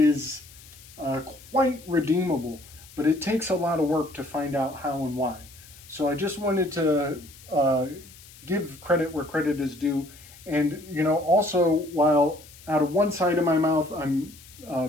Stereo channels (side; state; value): left; noise; hiss, 21 dB below the sound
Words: quite redeemable, but it takes a lot of work to find out how and why. So I just wanted to give credit where credit is due. And, also, while out of one side of my mouth, I'm